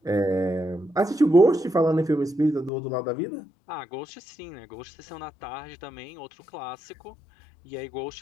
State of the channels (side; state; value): right; drops out; at 2.7 s